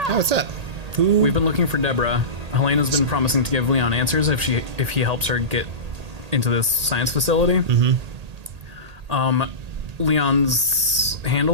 Oh, what's up? Who? We've been looking for Deborah. Helena's been promising to give Leon answers if he helps her get into this science facility. Mm-hmm. Leon's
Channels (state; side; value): late; left; 1.8 ms